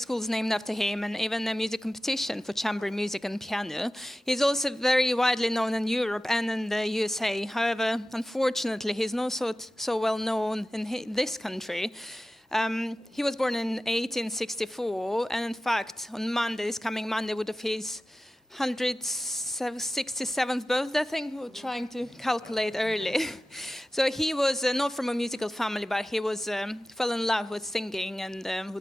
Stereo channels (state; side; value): normal; both; correlation 0.95